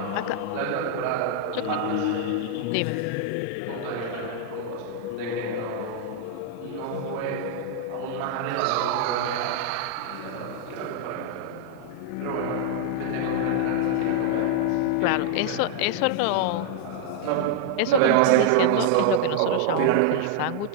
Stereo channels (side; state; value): both; different; correlation -0.01